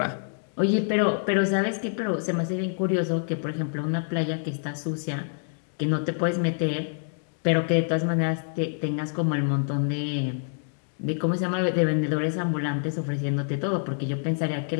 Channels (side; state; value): right; silent; digital silence